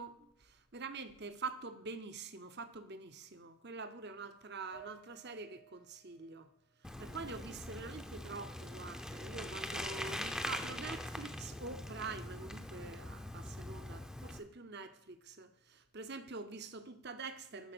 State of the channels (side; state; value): both; normal; correlation 0.43